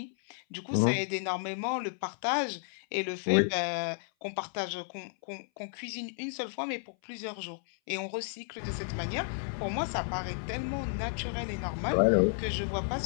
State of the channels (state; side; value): silent; right; 56 dB below the other